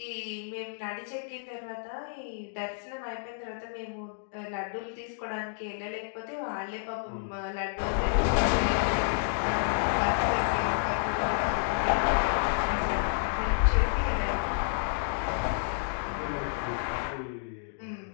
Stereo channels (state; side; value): silent; right; digital silence